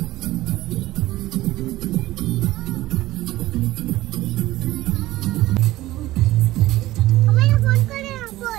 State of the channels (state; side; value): quieter; left; 16.4 dB